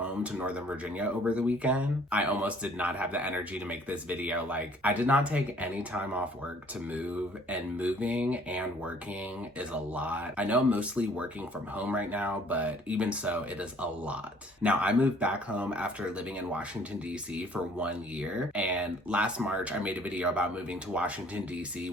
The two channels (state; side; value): normal; both; correlation 0.57